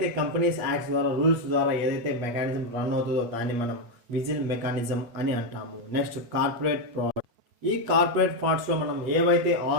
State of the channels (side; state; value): left; late; 8.4 ms